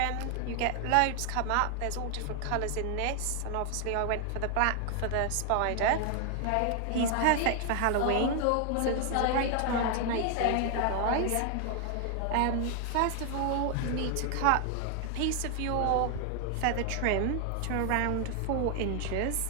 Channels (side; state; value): both; different; correlation 0.00